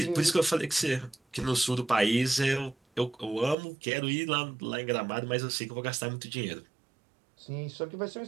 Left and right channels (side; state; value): left; drops out; at 3.6 s